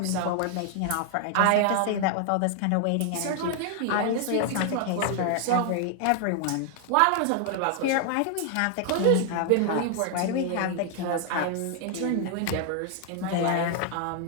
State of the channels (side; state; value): both; different; correlation 0.00